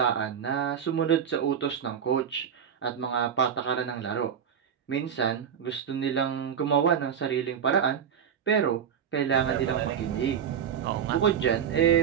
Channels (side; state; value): left; quieter; 8.1 dB